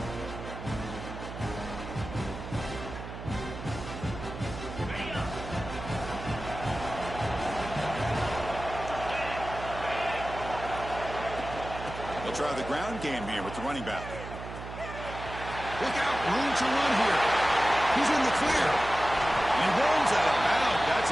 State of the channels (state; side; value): noise; right; hum, 10 dB below the sound